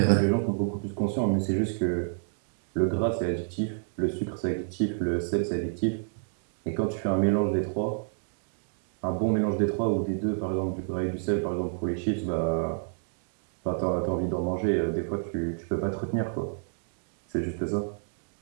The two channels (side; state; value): left; silent; digital silence